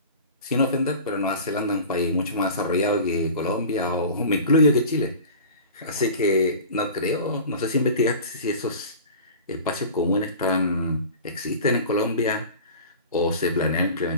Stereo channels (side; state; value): both; inverted; correlation -0.38